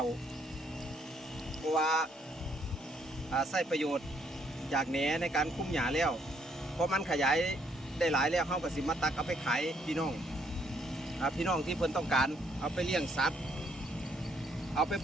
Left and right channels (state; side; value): normal; both; correlation 0.70